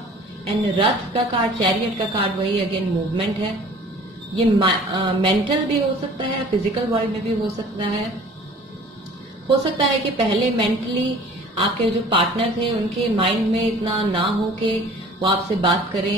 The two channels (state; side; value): normal; both; correlation 0.48